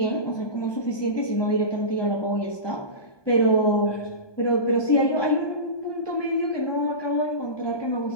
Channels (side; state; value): right; late; 1.2 ms